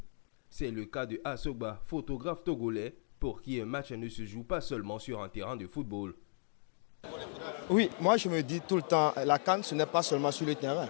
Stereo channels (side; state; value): right; silent; 54 dB below the other